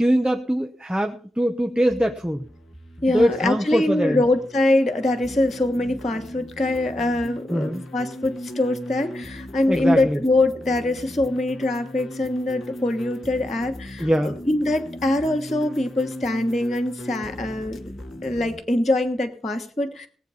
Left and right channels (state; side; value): normal; both; correlation 0.87